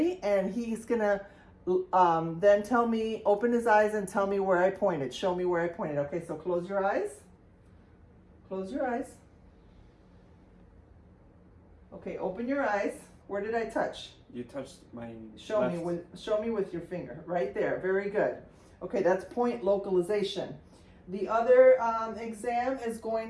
and he's gonna then tell me, open his eyes and tell me where I pointed. Show me where I pointed. Okay, so close your eyes. Close your eyes. Okay, open your eyes. Where did I touch? You touched my Show left. show me with your finger. Right there. Very good. Okay, that's point localization. The other exam is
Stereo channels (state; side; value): identical; both; correlation 1.00